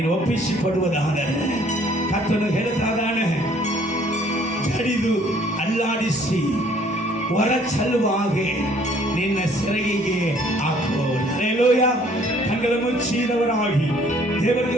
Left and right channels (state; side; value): normal; both; correlation 0.59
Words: ಒಪ್ಪಿಸಿಕೊಡುವುದಾದರೆ ಕರ್ತನು ಹೇಳ್ತಾನೆ, ಜಡಿದು ಅಲ್ಲಾಡಿಸಿ ಹೊರ ಚೆಲ್ಲುವ ಹಾಗೆ ನಿನ್ನ ಸೆರಗಿಗೆ ಹಾಕುವವರು. ಹಲ್ಲೆಲೂಯಾ. ಕಣ್ಣುಗಳ ಮುಚ್ಚಿದವರಾಗಿ ದೇವರಿಗೆ